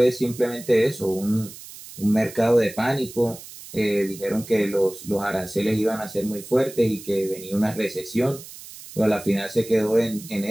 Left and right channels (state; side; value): noise; right; hiss, 16 dB below the sound